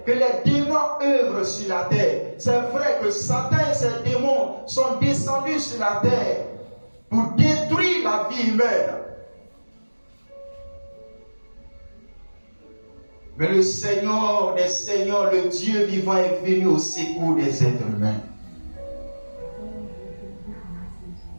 que les démons œuvrent sur la terre. C'est vrai que Satan et ses démons sont descendus sur la terre pour détruire la vie humaine. Mais le Seigneur des Seigneurs, le Dieu vivant, est venu au secours des êtres humains.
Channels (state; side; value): inverted; both; correlation -1.00